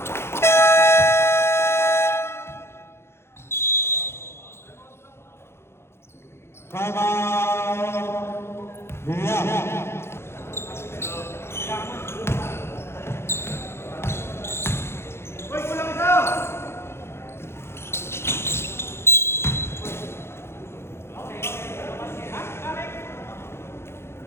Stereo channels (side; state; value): right; late; 0.12 ms